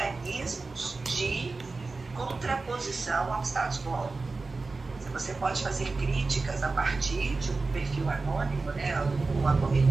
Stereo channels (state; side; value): quieter; left; 3.8 dB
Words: de contraposição ao status quo. Você pode fazer críticas a partir de um perfil anônimo, né, ou